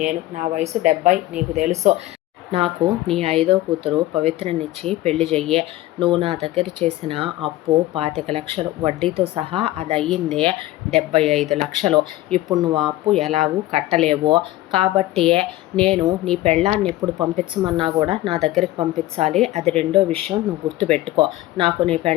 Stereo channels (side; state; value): right; quieter; 16.4 dB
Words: నేను. నా వయసు 70, నీకు తెలుసు. నాకు నీ 5వ కూతురు పవిత్రనిచ్చి పెళ్లి చెయ్యే. నువ్వు నా దగ్గర చేసిన అప్పు 25 లక్షలు, వడ్డీతో సహా అది అయ్యిందే 75 లక్షలు. ఇప్పుడు నువ్వు ఆ అప్పు ఎలాగూ కట్టలేవు. కాబట్టి నేను నీ పెళ్ళాన్ని ఎప్పుడు పంపించమన్నా కూడా నా దగ్గరికి పంపించాలి. అది రెండో విషయం, నువ్వు గుర్తుపెట్టుకో. నాకు నీ